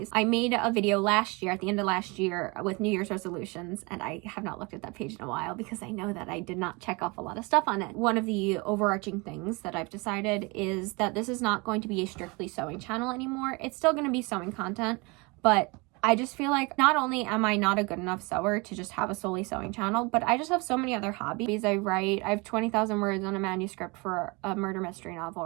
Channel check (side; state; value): left; quieter; 27.4 dB